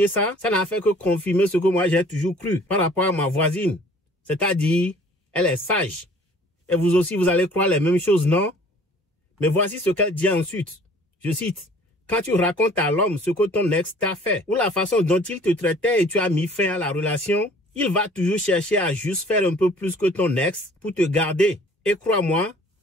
ça, ça n'a fait que confirmer ce que moi j'ai toujours cru par rapport à ma voisine. C'est-à-dire, elle est sage. Et vous aussi, vous allez croire les mêmes choses, non? Mais voici ce qu'elle dit ensuite. Je cite. Quand tu racontes à l'homme ce que ton ex t'a fait ou la façon dont il te traitait et tu as mis fin à la relation, il va toujours chercher à juste faire un peu plus que ton ex pour te garder. Et crois-moi,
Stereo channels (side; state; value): both; normal; correlation 0.52